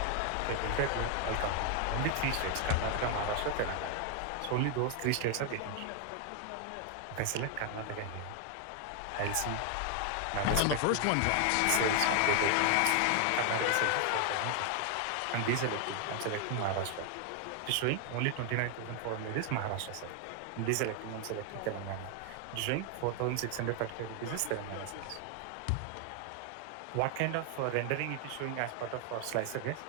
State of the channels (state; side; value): different; both; correlation 0.00